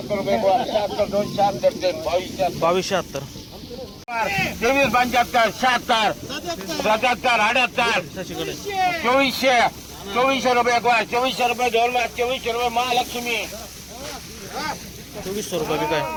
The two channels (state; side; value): identical; both; correlation 1.00